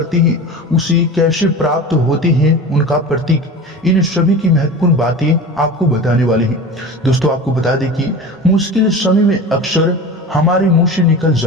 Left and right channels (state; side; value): normal; both; correlation 0.33